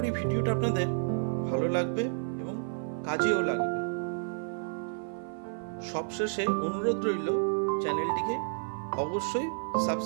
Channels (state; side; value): silent; left; 57 dB below the other